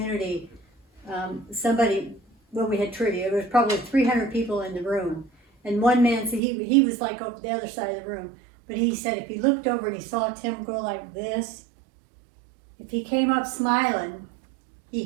when we had trivia, there was probably 300 people in the room. And one man said, he was like over the other side of the room, but he said if he looked over and he saw Tim go like this, if he came up smiling, he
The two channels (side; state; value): left; drops out; at 6.4 s